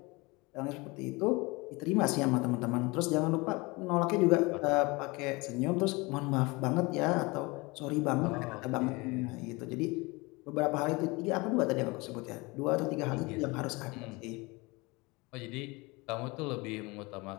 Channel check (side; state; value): right; quieter; 25.1 dB